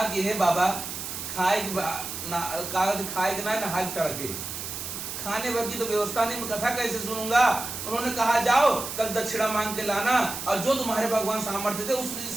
कि हे बाबा, खाए के ना नहाए तड़के, खाने भर की तो व्यवस्था नहीं, मैं कथा कैसे सुनूंगा? उन्होंने कहा जाओ कल दक्षिणा मांग के लाना और जो तुम्हारे भगवान सामर्थ्य थे उस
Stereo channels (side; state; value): right; noise; hiss, 7 dB below the sound